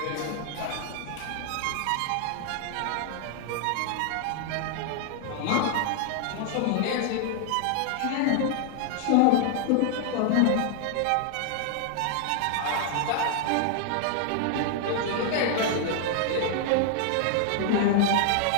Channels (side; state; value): both; different; correlation 0.00